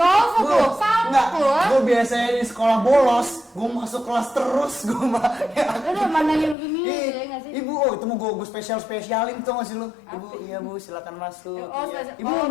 tuh, Enggak, salvo. gue biasanya di sekolah bolos, gue masuk kelas terus, gue mah. Udah mandangin begini ya nggak sih? Ibu, oh itu mau gue spesialin tuh masih lu. Ibu, iya bu, silakan masuk. Oh, Iya. ibu mau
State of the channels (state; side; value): drops out; right; at 6.6 s